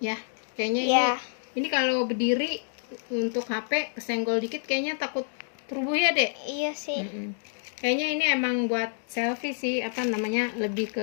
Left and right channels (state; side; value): silent; right; digital silence